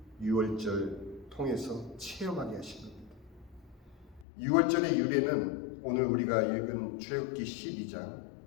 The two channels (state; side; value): drops out; right; at 4.2 s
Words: 유월절 통해서 체험하게 하신 겁니다. 유월절의 유래는 오늘 우리가 읽은 출애굽기